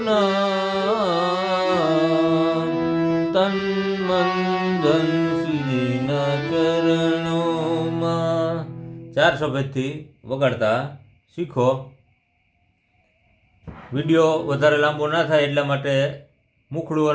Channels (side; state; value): both; identical; correlation 1.00